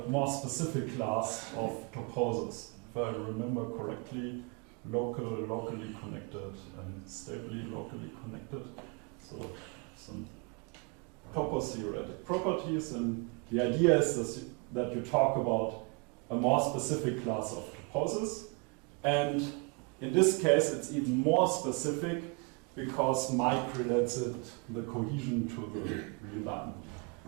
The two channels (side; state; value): left; quieter; 32.0 dB